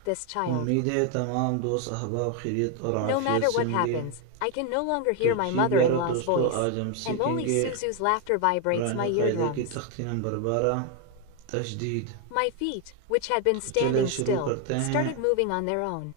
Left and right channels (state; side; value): different; both; correlation 0.01